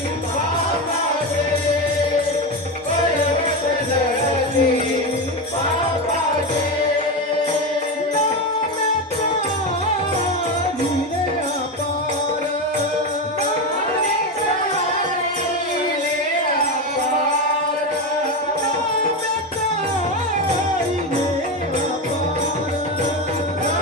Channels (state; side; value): normal; both; correlation 0.15